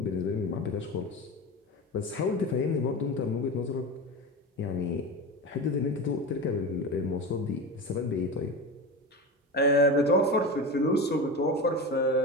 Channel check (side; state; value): both; normal; correlation 0.24